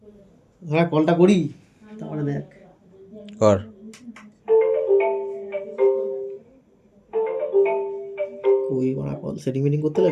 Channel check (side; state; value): both; identical; correlation 1.00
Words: হ্যাঁ, কলটা করি তারপরে দেখ। কর। ওই করা কল সেটিং মিটিং করতে